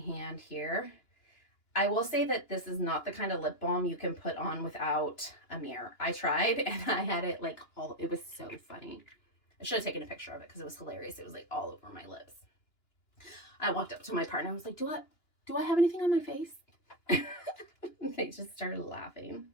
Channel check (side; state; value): right; late; 2.9 ms